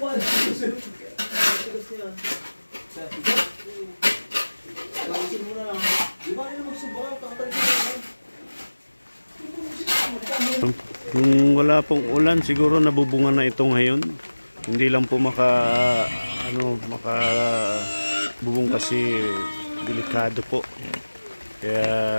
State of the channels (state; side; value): inverted; both; correlation -1.00